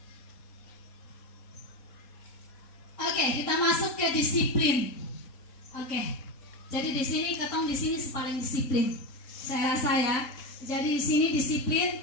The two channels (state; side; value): late; right; 3.9 ms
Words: Oke, kita masuk ke disiplin. Oke, jadi di sini ketong di sini paling disiplin. Saya rasa ya. Jadi di sini disiplin,